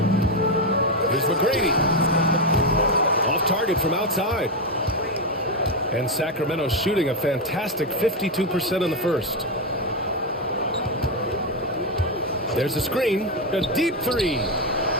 Here's McGrady. Off target from outside. And Sacramento shooting a fantastic 52% in the first. There's a screen. A deep 3.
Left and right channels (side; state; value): both; normal; correlation 0.07